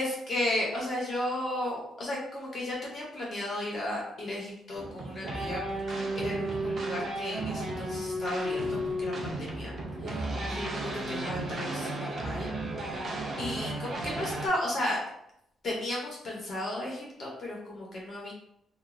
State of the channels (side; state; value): both; normal; correlation 0.75